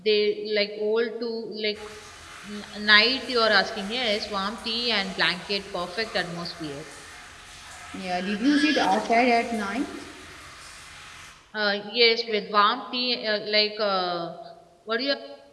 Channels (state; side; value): identical; both; correlation 1.00